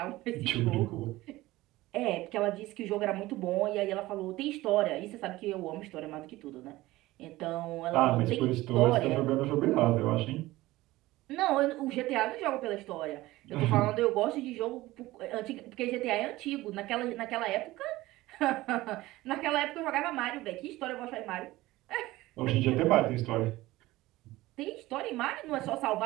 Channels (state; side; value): quieter; left; 18.1 dB